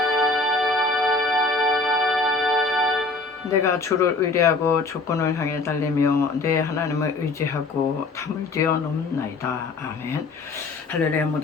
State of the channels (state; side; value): quieter; right; 3.6 dB